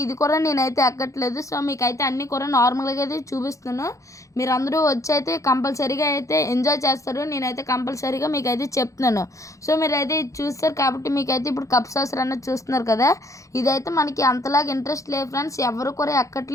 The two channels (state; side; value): late; right; 0.15 ms